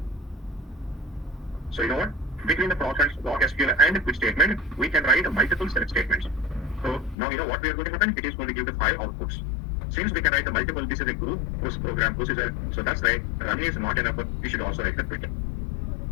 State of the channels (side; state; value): right; drops out; at 7.2 s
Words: So you know what? Between the ProcSQL and quit statement, we can write multiple select statements. So now you know what we are going to happen. It is going to give the 5 outputs. Since we can write the multiple, this is a group, this program, this is a, so that's why run is not enough. We should also write the quit.